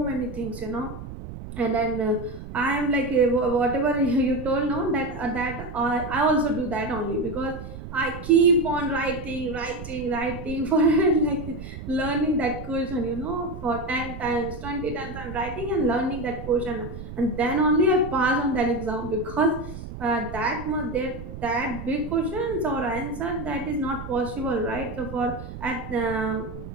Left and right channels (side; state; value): right; noise; rumble, 11 dB below the sound